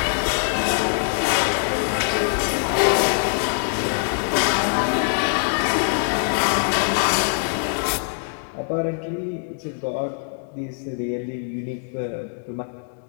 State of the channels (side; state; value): right; silent; digital silence